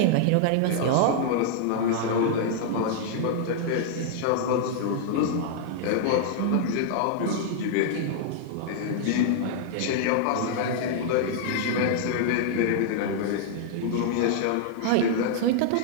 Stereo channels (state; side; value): different; both; correlation -0.01